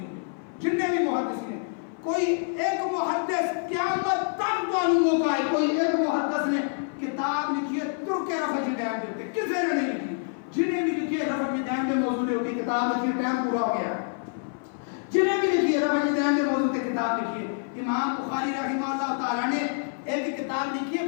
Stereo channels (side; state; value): right; silent; 56 dB below the other